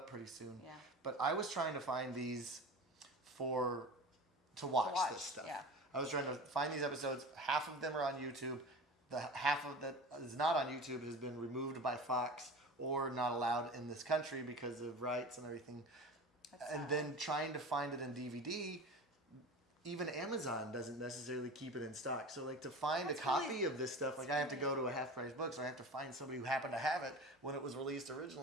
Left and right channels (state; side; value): normal; both; correlation 0.34